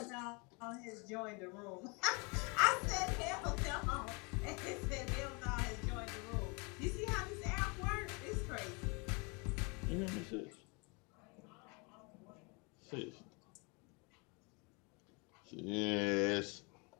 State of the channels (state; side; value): quieter; right; 30.7 dB